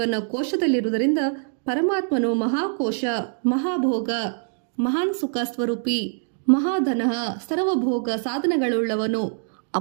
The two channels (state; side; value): silent; left; digital silence